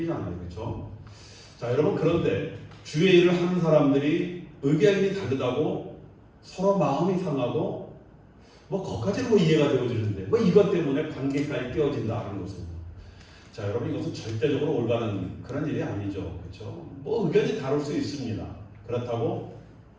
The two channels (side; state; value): both; identical; correlation 1.00